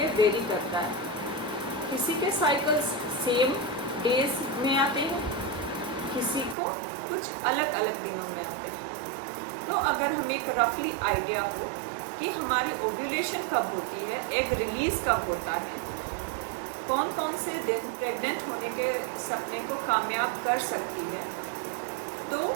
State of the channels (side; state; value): left; drops out; at 6.6 s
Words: वेरी करता है। किसी के साइकिल्स सेम डेज में आते हैं, किसी को कुछ अलग अलग दिनों में आते हैं। तो अगर हमें एक रफली आइडिया हो कि हमारी ओव्यूलेशन कब होती है, एग रिलीज़ कब होता है, कौन कौन से दिन प्रेग्नेंट होने के सपने को कामयाब कर सकती है, तो